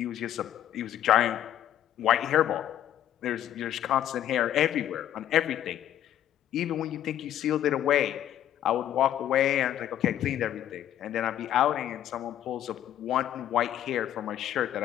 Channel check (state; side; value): quieter; right; 11.4 dB